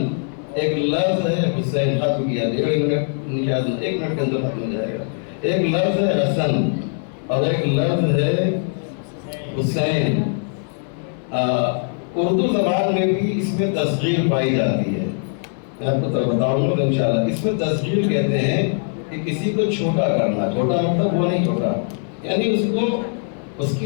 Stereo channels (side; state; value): right; silent; 59 dB below the other